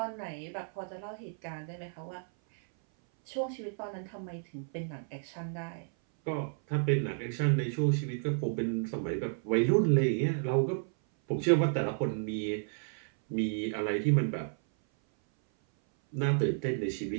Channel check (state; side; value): silent; left; 56 dB below the other